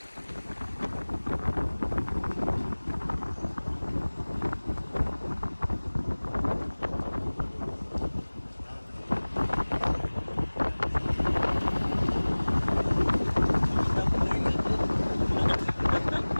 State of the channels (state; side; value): inverted; both; correlation -1.00